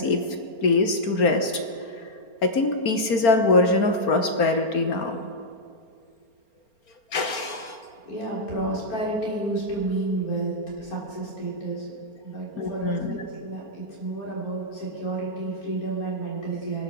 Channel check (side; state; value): right; late; 4.4 ms